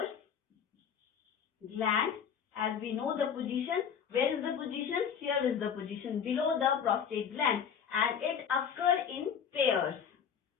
gland. As we know the position, where is the position? Here is the position, below the prostate gland, and it occurs in pairs.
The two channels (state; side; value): quieter; right; 7.6 dB